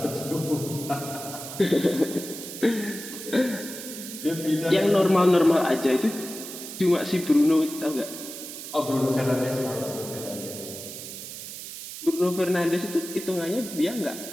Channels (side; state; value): right; noise; hiss, 10 dB below the sound